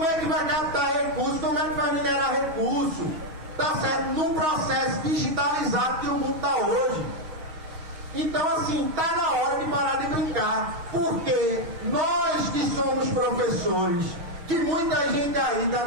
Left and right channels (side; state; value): left; late; 6.2 ms